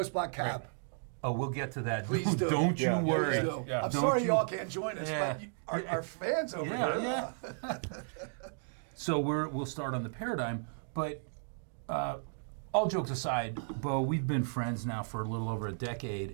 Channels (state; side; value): silent; left; digital silence